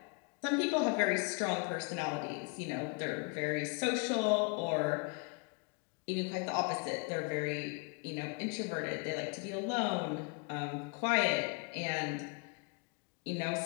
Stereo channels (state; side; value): quieter; right; 33.6 dB